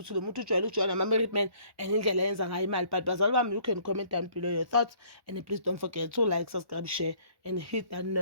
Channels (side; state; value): left; late; 1.1 ms